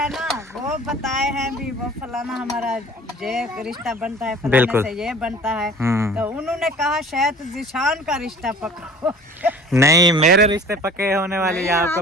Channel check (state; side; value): normal; both; correlation 0.46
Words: ना वो बताए हैं भी, वो फलाना हमारा ये रिश्ता बनता है, फलाने बिल्कुल। से ये बनता है। हम्म। तो उन्होंने कहा शायद जिशान का रिश्ता पक्का हो। नहीं, मेरे रिश्ते पक्के होने वाली है, आपको